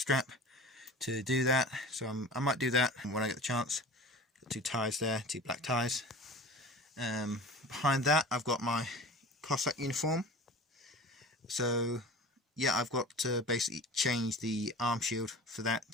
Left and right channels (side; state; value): both; normal; correlation 0.38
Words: to do that, so I might do that when I get the chance. Got 2 ties there, 2 black ties. Behind that I've got my Cossack uniform. So yeah, I've got to basically change the arm shield for that